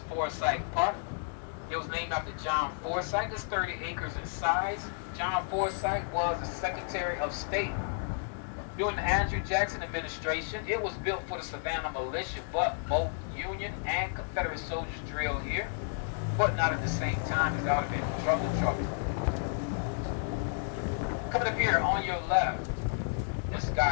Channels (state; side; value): silent; right; 56 dB below the other